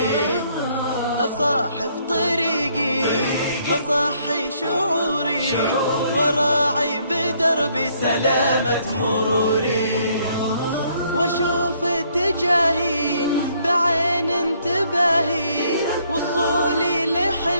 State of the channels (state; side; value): inverted; both; correlation -0.67